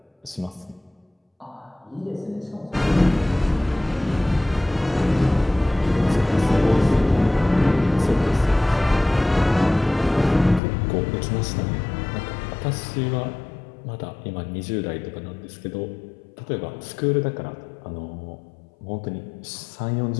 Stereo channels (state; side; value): drops out; right; at 10.6 s